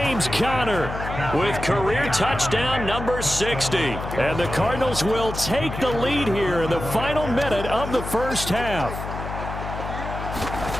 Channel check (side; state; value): left; noise; hum, 7 dB below the sound